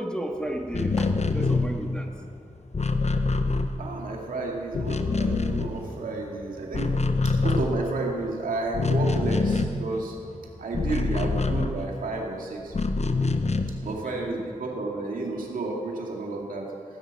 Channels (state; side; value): normal; both; correlation 0.79